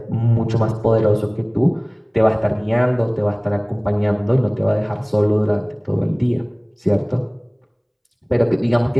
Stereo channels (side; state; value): both; identical; correlation 1.00